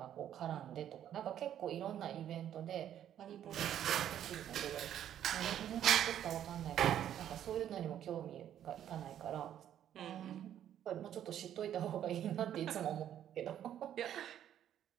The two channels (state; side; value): quieter; left; 10.6 dB